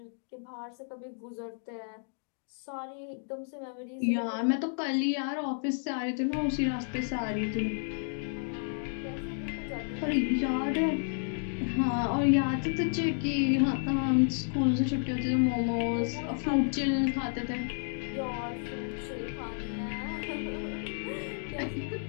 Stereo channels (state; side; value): silent; right; digital silence